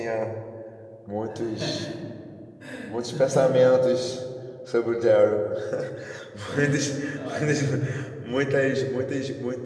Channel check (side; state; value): both; identical; correlation 1.00